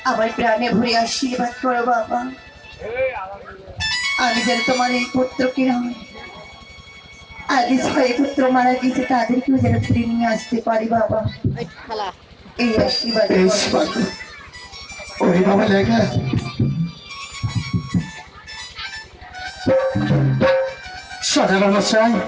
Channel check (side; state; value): both; identical; correlation 1.00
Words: আমার প্রাণে ভরে আশীর্বাদ করো বাবা। আমি যেন তোমার এই পুত্রকে নয়, আগে ছয় পুত্র মারা গেছে তাদেরকেও যেন ফিরে নিয়ে আসতে পারি বাবা, এই আশীর্বাদ করো। ওরে বাবা লেখা সদাগর